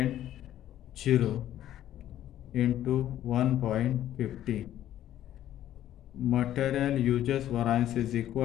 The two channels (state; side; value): quieter; right; 12.2 dB